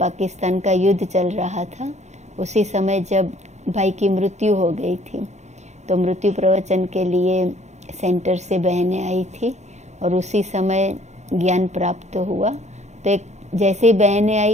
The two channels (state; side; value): late; left; 0.33 ms